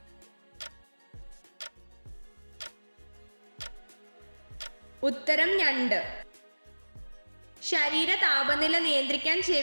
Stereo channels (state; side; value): inverted; both; correlation -1.00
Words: ഉത്തരം ഞണ്ട്. ശരീര താപനില നിയന്ത്രിക്കാൻ